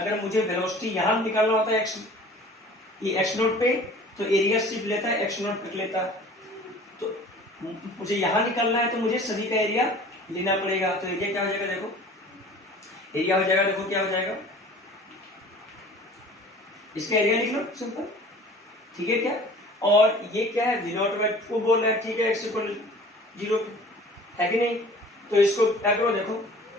मुझे वेलोसिटी यहां निकालना होता है ये x0 पे, तो एरिया सिर्फ लेता है x0 तक लेता, तो मुझे यहाँ निकलना है तो मुझे सभी का एरिया लेना पड़ेगा। तो एरिया क्या हो जाएगा, देखो एरिया हो जाएगा, देखो क्या हो जाएगा, इसका एरिया लिख लो सिंपल, ठीक है क्या। और ये क्या है, V0/2 बोल रहा है, ठीक है, x = 0 है कि नहीं। तो इसको क्या करो, देखो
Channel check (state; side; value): normal; both; correlation 0.46